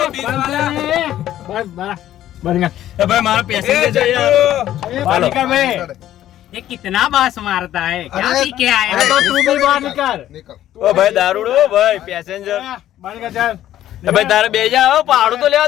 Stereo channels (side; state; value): right; quieter; 12.5 dB